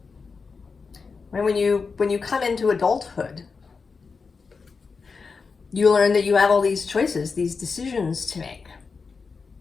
When you come into adulthood, you learn that you have all these choices, these decisions to make.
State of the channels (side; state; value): right; quieter; 4.9 dB